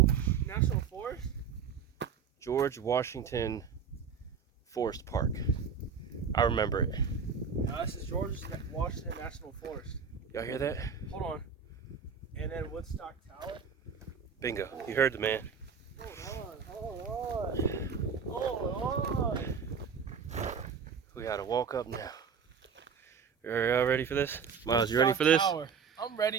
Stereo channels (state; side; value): quieter; left; 6.4 dB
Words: Forest? George Washington Forest Park. I remember it. No, this is George Washington National Forest. Y'all hear that? Hold on. And then Woodstock Tower. Bingo. You heard the man. Hold on. We gotta walk up now. Y'all ready for this? Miles, you ready for this? Tower. I'm